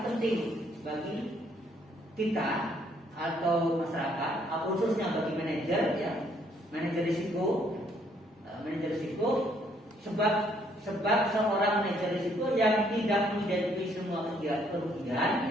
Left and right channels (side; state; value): both; normal; correlation 0.67